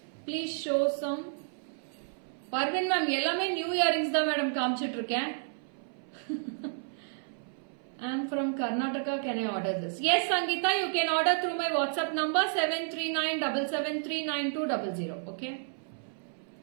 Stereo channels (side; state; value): left; silent; 57 dB below the other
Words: Please show some. Parvin ma'am, எல்லாமே new earrings தான் madam காமிச்சிட்டு இருக்கேன். I am from Karnataka. Can I order this? Yes, Sangeeta, you can order through my WhatsApp number 73977399200. Okay.